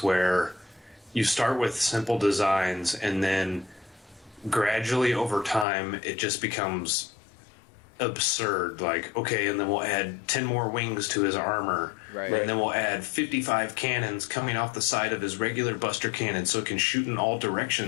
where you start with simple designs and then gradually over time it just becomes absurd. Like, okay, and then we'll add 10 more wings to his armor. Right. And then we'll add 55 cannons coming off the side of his regular buster cannon so it can shoot in all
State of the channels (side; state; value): right; drops out; at 5.7 s